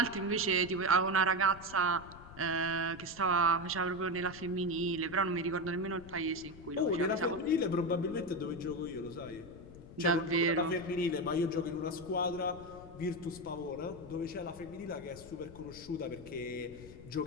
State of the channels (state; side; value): noise; left; rumble, 17 dB below the sound